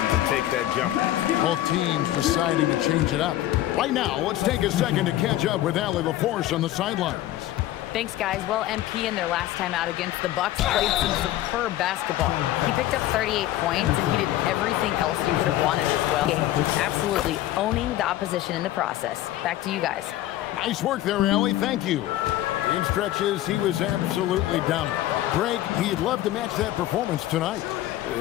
to take that jumper. Both teams deciding to change it up. Right now, let's take a second to catch up with Allie LaForce on the sidelines. Thanks, guys. Well, MP in their last time out against the Bucks played some superb basketball. He picked up 38 points, and he did everything else you could have wanted as well. Absolutely owning the opposition in the process. Back to you guys. Nice work there, Allie. Thank you. In stretches, he was absolutely dominant. Greg, he'd love to match that performance tonight.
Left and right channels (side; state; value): right; quieter; 14.3 dB